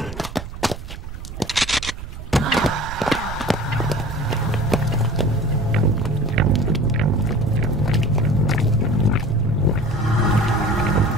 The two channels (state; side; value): noise; right; rumble, 10 dB below the sound